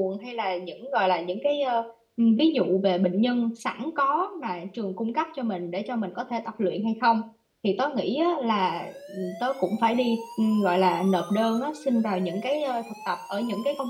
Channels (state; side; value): identical; both; correlation 1.00